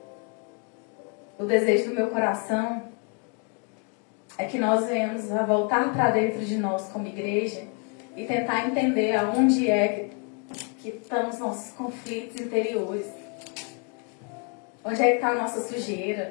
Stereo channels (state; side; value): quieter; right; 37.9 dB